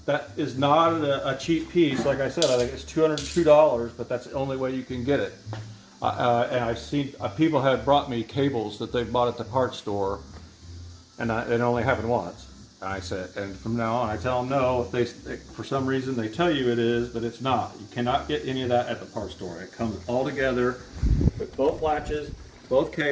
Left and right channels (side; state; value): both; identical; correlation 1.00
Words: That is not a cheap piece. Like I said, I think it's $202, but that's the only way you can get it. And I've seen people have brought me cables that they've bought at the parts store, and it only happened once. And I said, and from now on, I tell them no. If they, for some reason, they tell you it is, but it's not. You cannot get any of that at the parts store. It comes all together with both latches, both